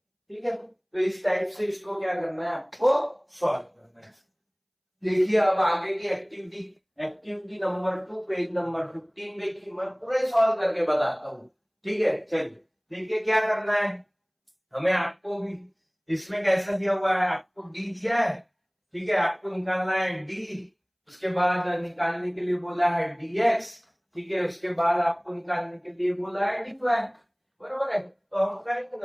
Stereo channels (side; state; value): both; identical; correlation 1.00